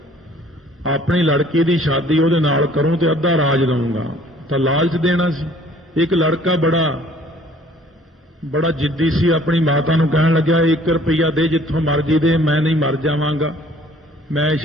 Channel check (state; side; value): normal; both; correlation 0.56